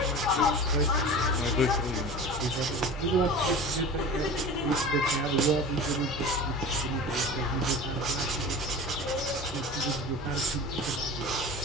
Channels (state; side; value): normal; both; correlation 0.35